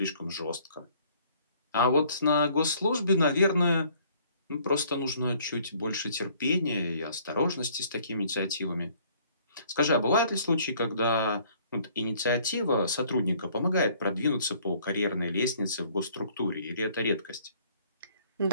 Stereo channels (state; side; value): inverted; both; correlation -0.59